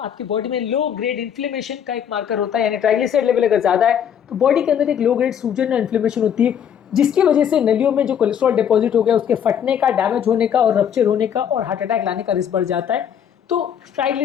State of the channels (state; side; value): quieter; right; 8.7 dB